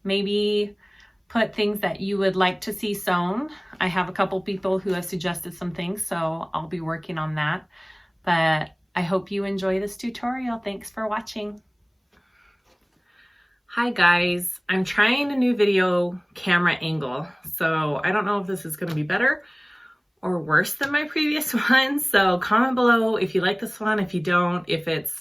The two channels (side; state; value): both; identical; correlation 1.00